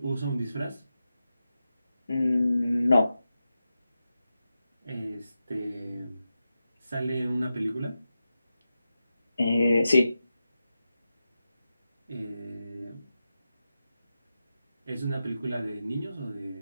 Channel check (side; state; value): both; inverted; correlation -0.91